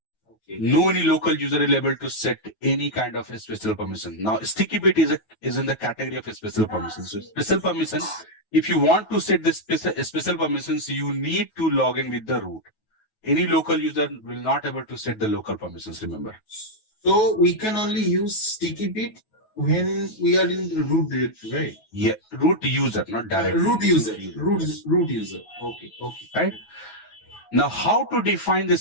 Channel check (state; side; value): late; right; 9.3 ms